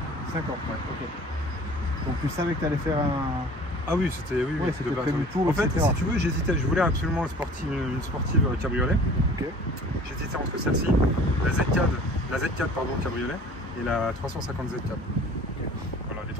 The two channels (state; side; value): normal; both; correlation 0.47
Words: 5 ans, ouais, ok. Donc tu savais que tu allais faire un... Ah oui, c'était prévu tour, en fait, etc. si tu veux, j'hésitais. Je voulais absolument une sportive cabriolet. Okay. J'hésitais entre celle-ci, la Z4 pardon, cabriolet, et la 350 Z4. Okay. Voilà, les